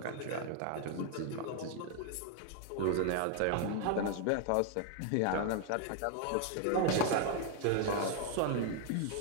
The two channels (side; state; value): both; different; correlation 0.00